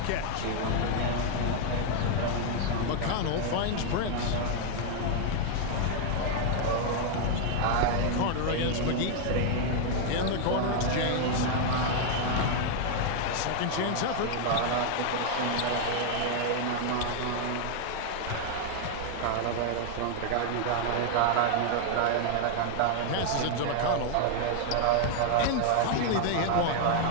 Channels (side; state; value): both; different; correlation 0.00